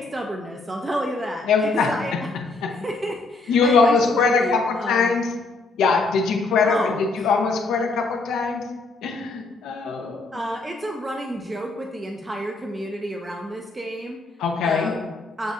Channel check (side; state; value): right; quieter; 3.6 dB